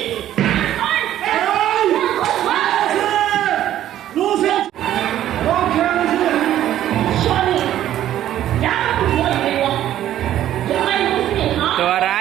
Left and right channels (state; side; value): quieter; left; 12.2 dB